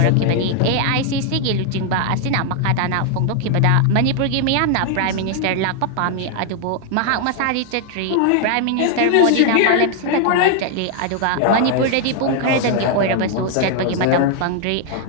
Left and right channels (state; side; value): different; both; correlation 0.00